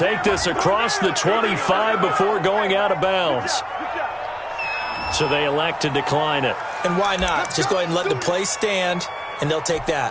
this across the 25 before going out of bounds. So they elect to decline it. And why not? Just go ahead and let the play stand, and they'll take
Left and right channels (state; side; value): identical; both; correlation 1.00